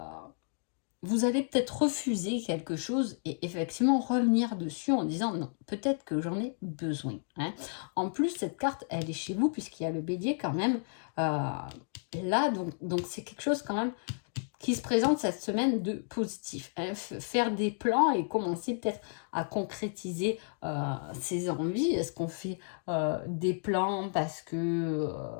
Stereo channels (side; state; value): right; silent; digital silence